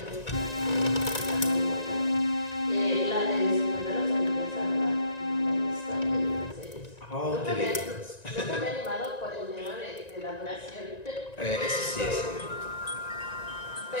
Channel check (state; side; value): late; right; 1.9 ms